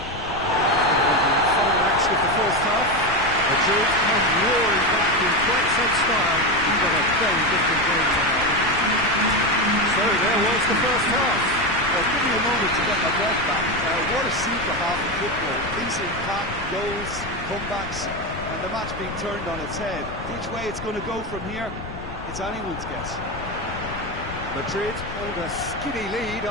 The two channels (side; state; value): left; noise; rumble, 11 dB below the sound